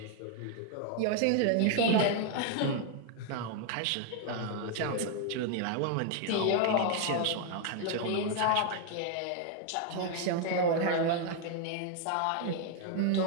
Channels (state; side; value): different; both; correlation 0.00